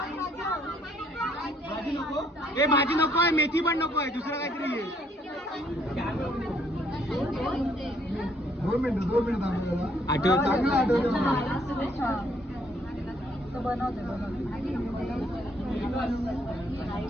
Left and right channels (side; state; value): both; normal; correlation 0.67